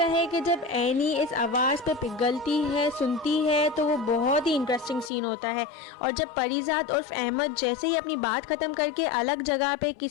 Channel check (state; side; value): drops out; right; at 5.1 s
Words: है कि जब एनी इस आवाज़ पे पिघलती है, सुनती है, तो वो बहुत ही इंटरेस्टिंग सीन होता है। और जब परिजात उर्फ अहमद जैसे ही अपनी बात ख़त्म करके अलग जगह पे